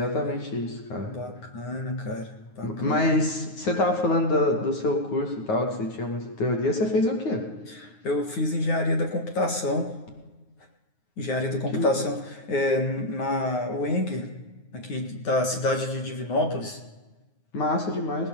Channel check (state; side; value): late; right; 9.5 ms